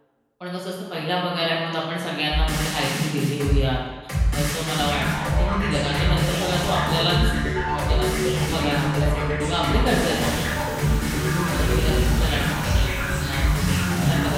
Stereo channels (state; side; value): identical; both; correlation 1.00